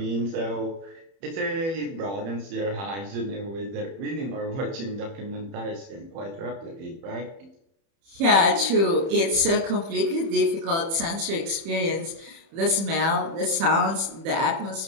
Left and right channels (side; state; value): left; late; 30 ms